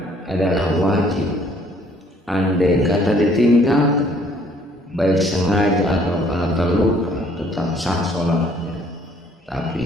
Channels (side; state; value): both; normal; correlation 0.61